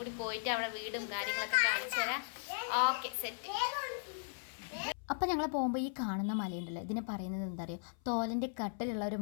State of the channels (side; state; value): right; silent; 53 dB below the other